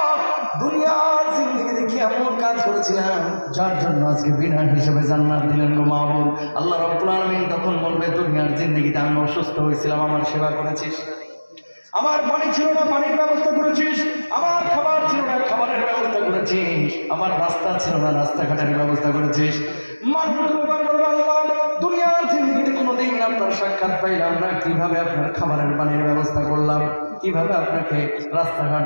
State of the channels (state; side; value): inverted; both; correlation -1.00